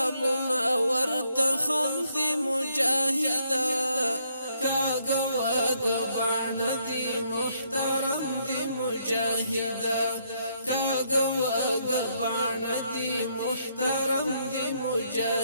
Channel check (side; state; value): both; inverted; correlation -0.72